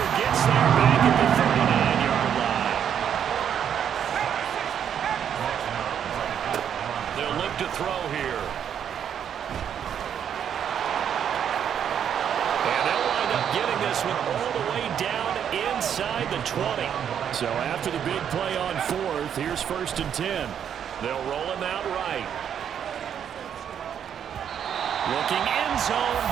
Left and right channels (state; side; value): quieter; left; 8.7 dB